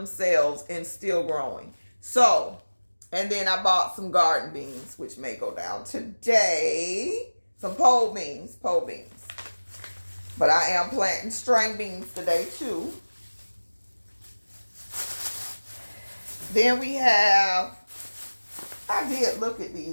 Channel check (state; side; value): inverted; both; correlation -1.00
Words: and still growing. So, and then I bought some garden beans, which may go down today. Some pole beans. But I am planting string beans today too. Then we have, I did look at